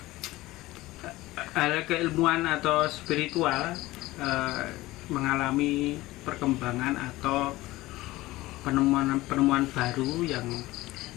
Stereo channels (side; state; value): right; quieter; 18.5 dB